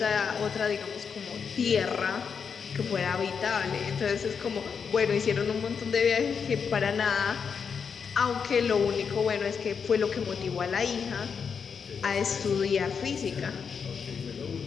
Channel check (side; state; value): right; quieter; 6.3 dB